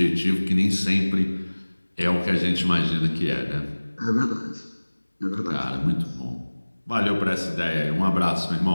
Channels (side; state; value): both; inverted; correlation -1.00